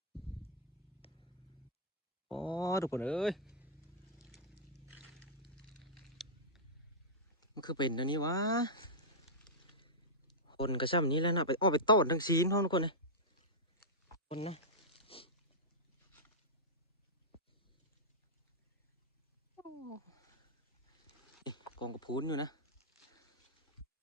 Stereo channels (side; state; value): both; normal; correlation -0.10